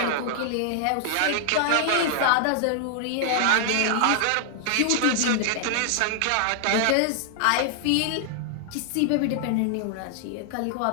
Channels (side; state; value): both; different; correlation -0.01